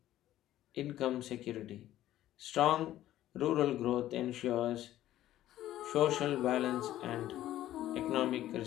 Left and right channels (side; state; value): right; quieter; 13.5 dB